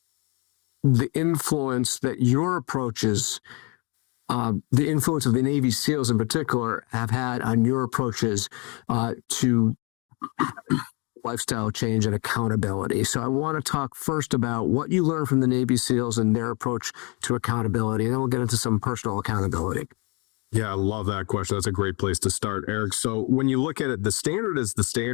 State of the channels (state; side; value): quieter; right; 31.3 dB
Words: the influence that your approaches, the influence of the Navy SEALs in particular, have had on your approaches to lifestyle change and accountability. So I want to talk first about what you learned from the Navy SEALs and their approach to accountability, and then we'll get into some personal accountability. Yeah, I love that question. That's a great place to start, Eric. So when you look at it, the